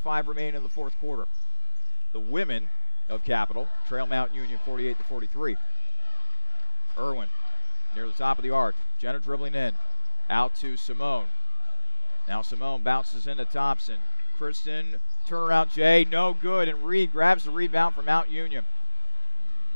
remaining in the fourth quarter. The women of Capital trail Mount Union 48-43. Irwin near the top of the arc. Jenna dribbling in. Out to Simone. Now Simone bounces into Thompson. Kristen, turnaround Jay, no good, and Reed grabs the rebound from Mount Union.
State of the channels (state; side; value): inverted; both; correlation -1.00